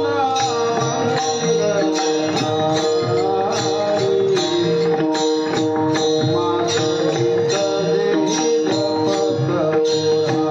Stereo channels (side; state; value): both; identical; correlation 1.00